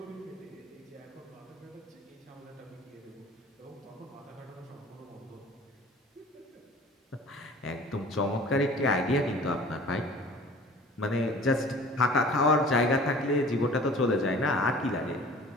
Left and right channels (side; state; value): both; normal; correlation 0.45